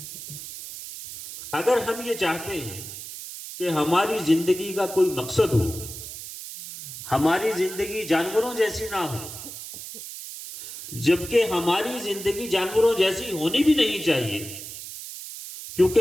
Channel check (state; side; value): noise; right; hiss, 11 dB below the sound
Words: اگر ہم یہ چاہتے ہیں کہ ہماری زندگی کا کوئی مقصد ہو، ہماری زندگی جانوروں جیسی نہ ہو، جبکہ ہماری زندگی جانوروں جیسی ہونی بھی نہیں چاہیے،